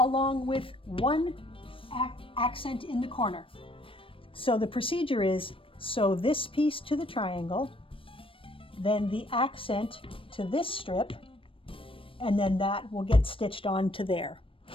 with one accent in the corner. So the procedure is sew this piece to the triangle, then the accent to this strip, and then that will get stitched onto there.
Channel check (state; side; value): late; right; 0.26 ms